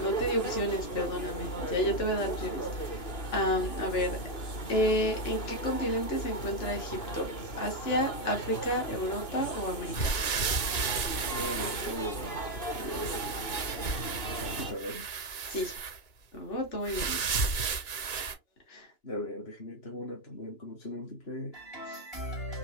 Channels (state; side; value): late; right; 2.9 ms